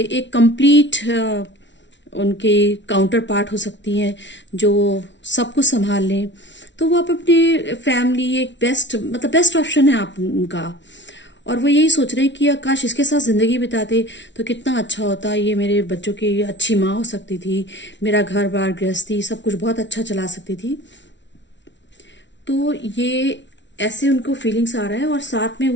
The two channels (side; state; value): right; late; 0.52 ms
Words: एक कंप्लीट उनके काउंटर पार्ट हो सकती हैं जो सब कुछ संभाल लें। तो वो आप अपनी फैमिली एक बेस्ट, मतलब बेस्ट ऑप्शन है आप उनका। और वो यही सोच रहे हैं कि काश इसके साथ जिंदगी बिताते तो कितना अच्छा होता, ये मेरे बच्चों की अच्छी माँ हो सकती थी, मेरा घर बार गृहस्थी सब कुछ बहुत अच्छा चला सकती थी। तो ये ऐसे उनको फीलिंग्स आ रहा है, और साथ में